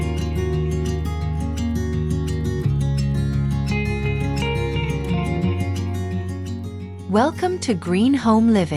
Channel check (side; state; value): both; identical; correlation 1.00